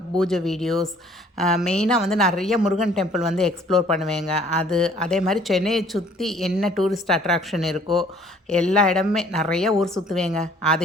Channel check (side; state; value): both; normal; correlation 0.57